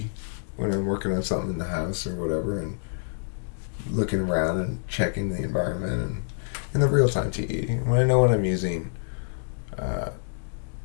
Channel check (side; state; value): right; silent; digital silence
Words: when I'm working on something in the house or whatever, and looking around and checking the environment, and in the real-time TE. When I know when I'm using